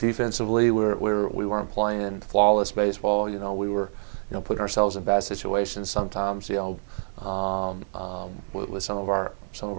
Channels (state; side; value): silent; left; 60 dB below the other